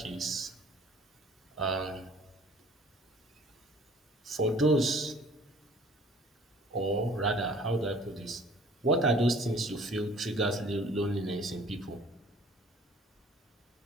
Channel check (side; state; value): both; normal; correlation 0.52